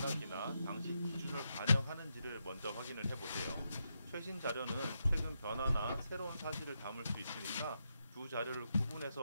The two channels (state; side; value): inverted; both; correlation -0.84